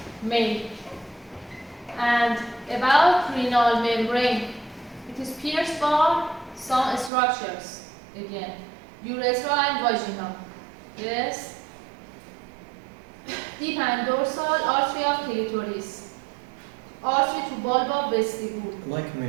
male. And about renal membrane, it is pierced by some structures. Again, urethra and vaginal. Yes. Deep and dorsal artery of clitoris. Artery to bulba vestibule. Like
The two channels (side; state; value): left; drops out; at 7.1 s